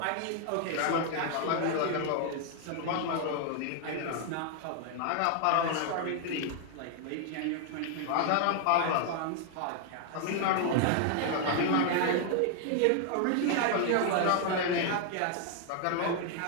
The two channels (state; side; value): different; both; correlation 0.00